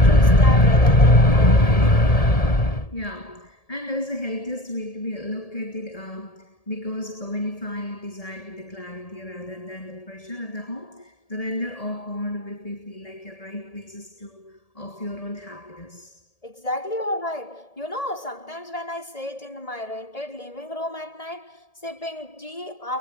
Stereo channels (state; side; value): late; right; 1.8 ms